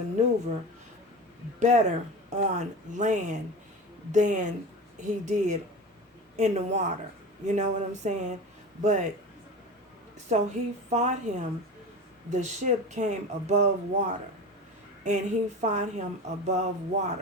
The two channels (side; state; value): both; normal; correlation 0.30